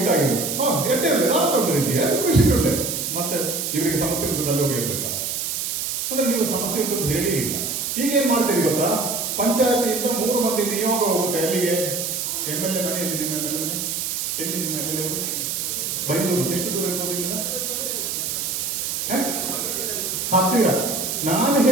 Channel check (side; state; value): right; noise; hiss, 2 dB below the sound